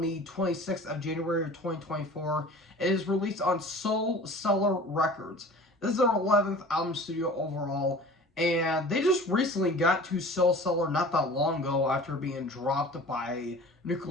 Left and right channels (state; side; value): normal; both; correlation 0.42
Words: 26th of January of 2024. It is released on Soul Cellar Records. This is their 11th album studio overall, and they just recently got to Soul Cellar not that long ago after being dropped by